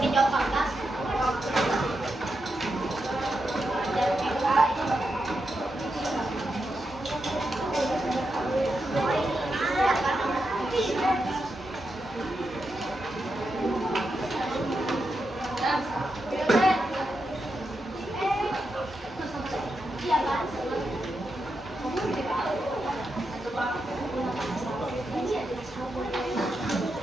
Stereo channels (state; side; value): normal; both; correlation 0.86